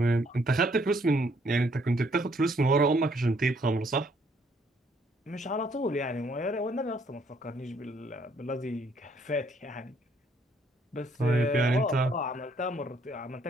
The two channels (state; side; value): normal; both; correlation 0.67